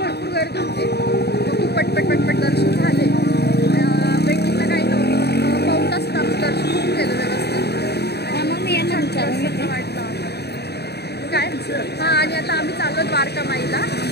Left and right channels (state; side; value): late; right; 0.48 ms